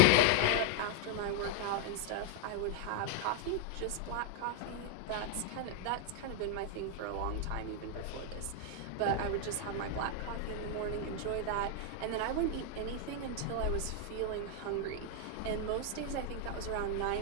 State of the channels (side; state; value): both; different; correlation 0.00